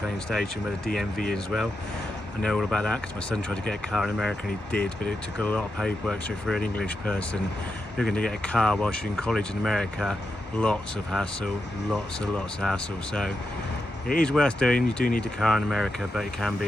station where the DMV is as well. I know all about that because my son tried to get a car in America and he did, but it took a lot of paperwork. So if you're an English person looking to get a car whilst you're in college in America, lots of hassle, lots of hassle. So it is worth doing. You do need a car in America, but it can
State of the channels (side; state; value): both; normal; correlation 0.87